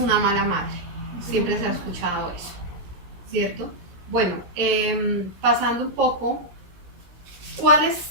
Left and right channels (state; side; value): late; left; 16 ms